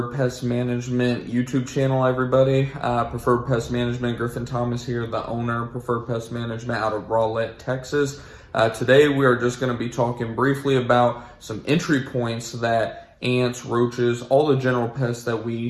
Pest Management YouTube channel, everybody. Preferred Pest Management, Griffin Thomas here, the owner of Preferred Pest Management out of Rowlett, Texas. Today we are just going to be talking briefly about some entry points that ants, roaches, all the general pests that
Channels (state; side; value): identical; both; correlation 1.00